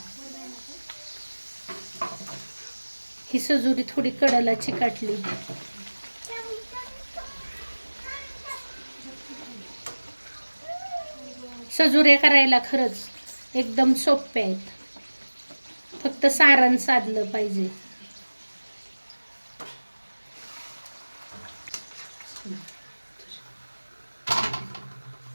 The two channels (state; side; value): inverted; both; correlation -1.00